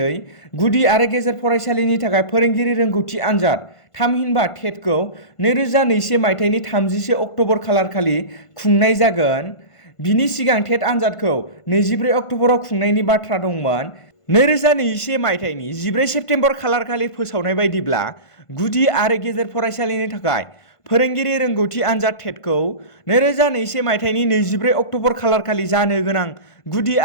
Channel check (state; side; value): late; right; 1.5 ms